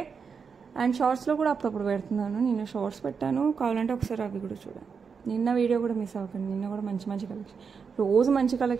and షార్ట్స్లో కూడా అప్పుడప్పుడు పెడుతున్నాను, నిన్న షార్ట్స్ పెట్టాను, కావాలంటే ఒకసారి అవి కూడా చూడండి. నిన్న వీడియో కూడా మిస్ అవ్వకండి, నిన్న కూడా మంచి మంచి కలెక్షన్, రోజు మంచి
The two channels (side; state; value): left; quieter; 5.9 dB